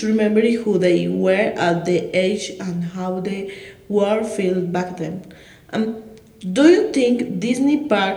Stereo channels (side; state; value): both; identical; correlation 1.00